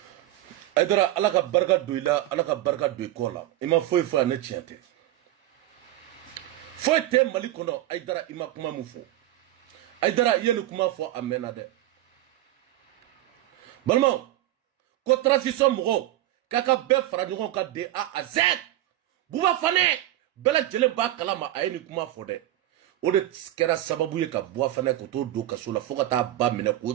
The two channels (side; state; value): left; quieter; 14.5 dB